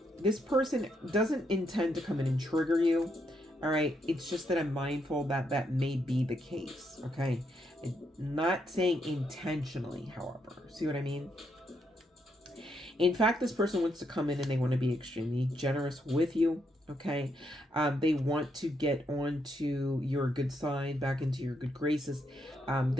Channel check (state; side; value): normal; both; correlation 0.77